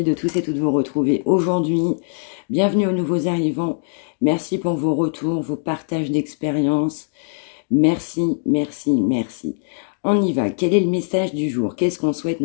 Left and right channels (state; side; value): silent; right; digital silence